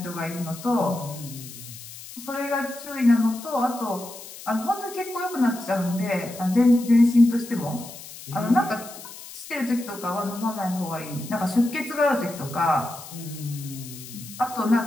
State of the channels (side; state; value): left; noise; hiss, 15 dB below the sound